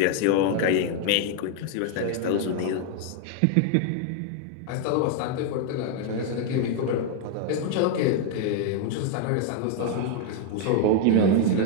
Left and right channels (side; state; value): both; different; correlation 0.00